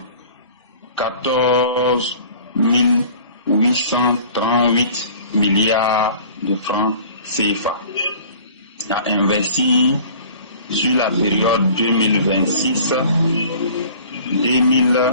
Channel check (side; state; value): both; inverted; correlation -0.47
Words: 838 milliards de francs CFA à investir sur la période